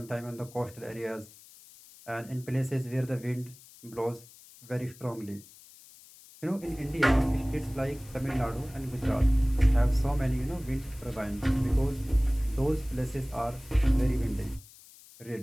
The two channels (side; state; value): left; noise; hiss, 22 dB below the sound